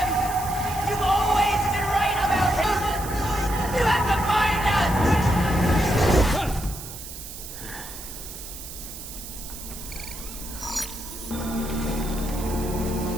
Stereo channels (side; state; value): right; noise; hiss, 11 dB below the sound